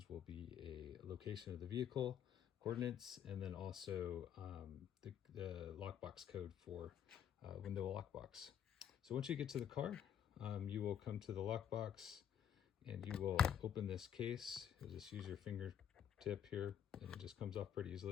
will be a location of the vehicle, coordinates, and then also the lockbox code for window lockbox. So once you get to the car, you will come to the lockbox and you will open this case. You'll just use your fingertip here and it just comes off pretty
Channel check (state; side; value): quieter; right; 9.2 dB